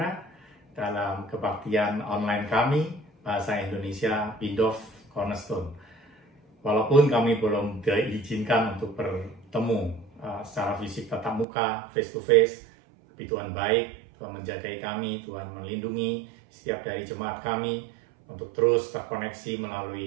dalam kebaktian online kami Bahasa Indonesia Bindov Cornerstone. Walaupun kami belum diizinkan untuk bertemu secara fisik tatap muka, face to face, tapi Tuhan baik, Tuhan menjagai kami, Tuhan melindungi setiap dari jemaat kami untuk terus terkoneksi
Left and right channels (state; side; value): drops out; left; at 11.5 s